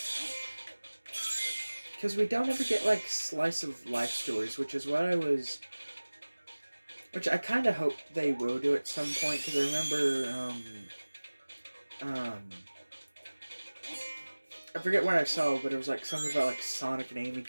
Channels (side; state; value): both; inverted; correlation -1.00